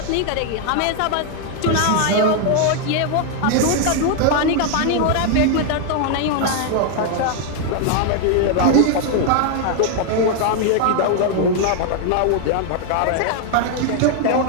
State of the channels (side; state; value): both; different; correlation 0.00